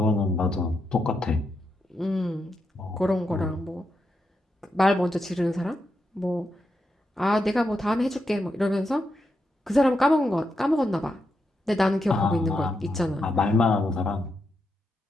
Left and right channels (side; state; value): both; normal; correlation 0.84